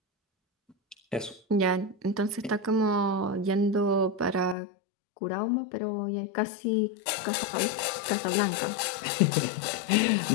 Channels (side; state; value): right; drops out; at 4.5 s